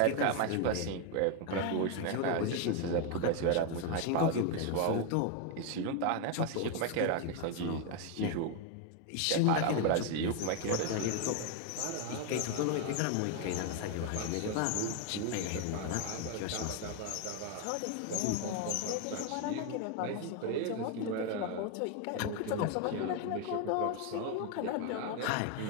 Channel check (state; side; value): different; both; correlation 0.01